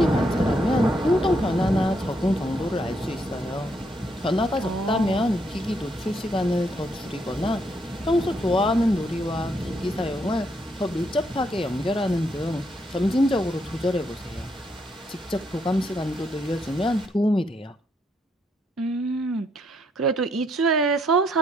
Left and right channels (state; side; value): normal; both; correlation 0.75